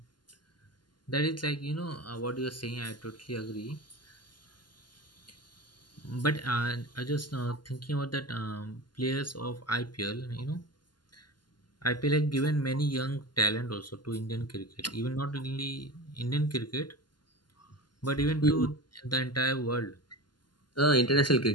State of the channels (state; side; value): late; right; 0.71 ms